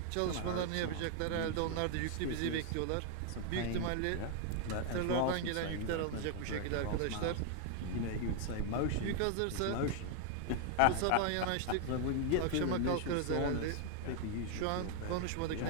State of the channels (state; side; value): different; both; correlation 0.00